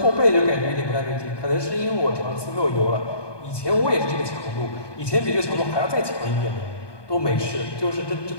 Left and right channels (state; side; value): late; right; 1.2 ms